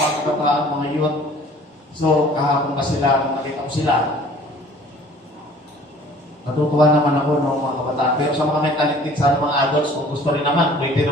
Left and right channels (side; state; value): both; normal; correlation 0.51